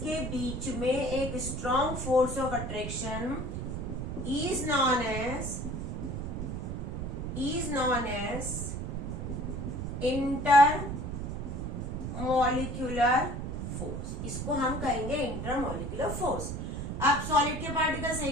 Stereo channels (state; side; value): noise; right; rumble, 4 dB below the sound